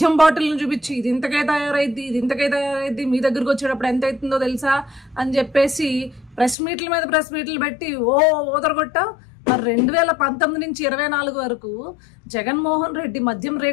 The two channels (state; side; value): drops out; right; at 6.6 s